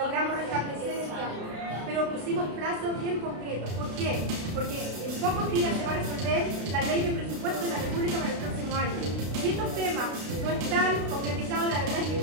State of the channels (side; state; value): left; late; 32 ms